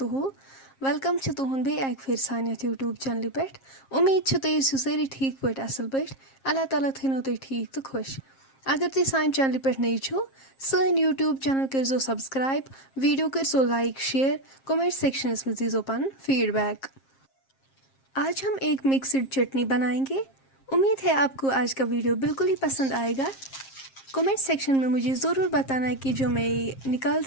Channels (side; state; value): right; late; 7.5 ms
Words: वेलकम छ तुहुंद बे एक फिर सानियत यूट्यूब चैनल पे उम्मीद छ तुम ٲسِو سٲری ٹھیٖک پٲٹھۍ اصل پٲٹھۍ اللہ تعالیٰ تھٲینو تُہۍ ٹھیٖک تہٕ خۄش اگر تُہۍ سانہِ چینلہِ پٮ۪ٹھ نٔے چھو سٲنۍ یوٗٹیوٗب چینل کٔرزیو سبسکرایب ویڈیو کٔرزیو لایک شیئر کومنٹ سیکشنس में दीजिए پنُن फीडबैक। आज हम एक मिक्सड चटनी बनाएंगे। उम्मीद है आपको आज का वीडियो बिल्कुल ही पसंद आएगा। कमेंट सेक्शन में मुझे ज़रूर बताना कि जो मैं निकाल